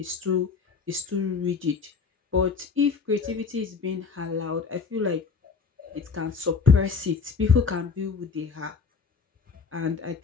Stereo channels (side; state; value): right; quieter; 5.1 dB